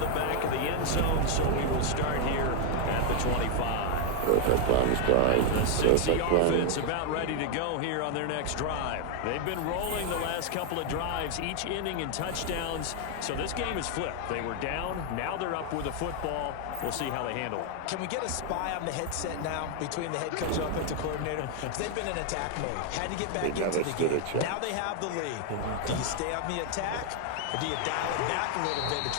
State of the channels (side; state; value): both; different; correlation 0.00